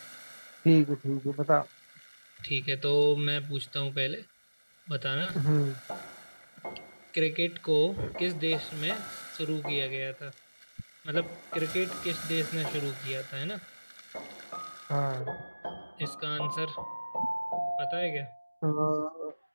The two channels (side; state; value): both; inverted; correlation -1.00